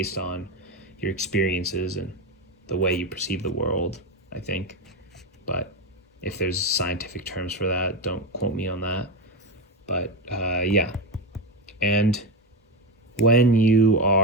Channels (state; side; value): normal; both; correlation 0.15